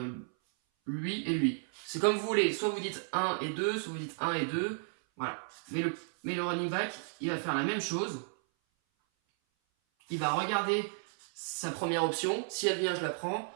lui et lui. C'est comme vous voulez, soit vous dites 1 et 2, soit vous dites 1 et 2, voilà. Mais le running back, il va faire la même chose. Il va regarder sa première option, si elle vient, je la prends.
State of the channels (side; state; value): left; silent; 56 dB below the other